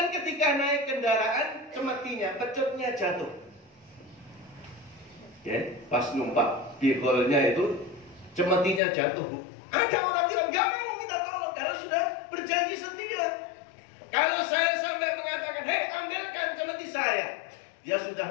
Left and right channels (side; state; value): right; drops out; at 8.8 s